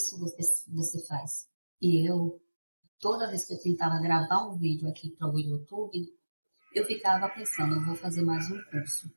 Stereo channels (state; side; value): inverted; both; correlation -1.00